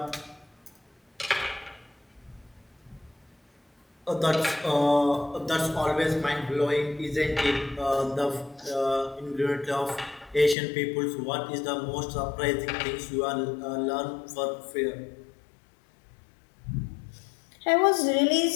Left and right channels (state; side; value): drops out; right; at 10.6 s